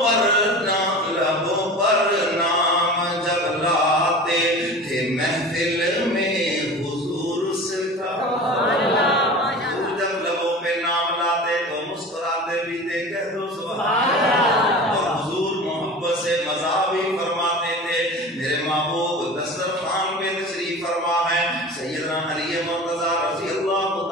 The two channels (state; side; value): normal; both; correlation 0.35